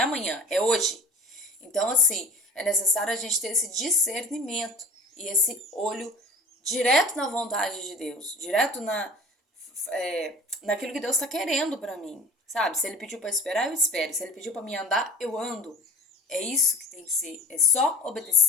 amanhã, é hoje. Então, assim, é necessário a gente ter esse discernimento e esse olho direto na vontade de Deus, direto naquilo que Deus está querendo para mim, sabe? Se Ele pediu para esperar, eu espero. Se Ele pediu para me andar, eu ando. É isso que tem que ser, é só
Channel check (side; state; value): both; normal; correlation 0.43